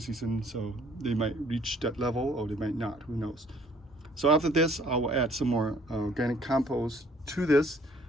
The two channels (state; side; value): normal; both; correlation 0.59